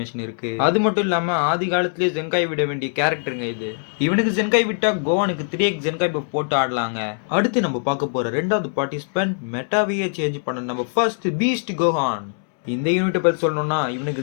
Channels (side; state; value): right; silent; 64 dB below the other